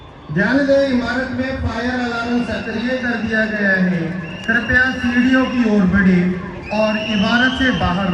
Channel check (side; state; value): both; identical; correlation 1.00